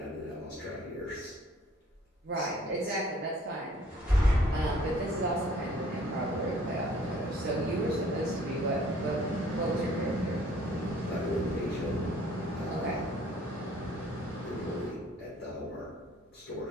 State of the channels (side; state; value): both; normal; correlation 0.57